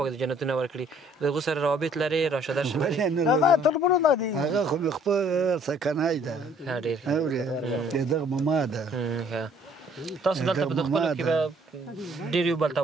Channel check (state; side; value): normal; both; correlation 0.60